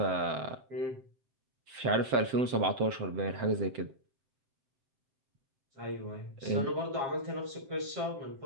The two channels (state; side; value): late; left; 7.7 ms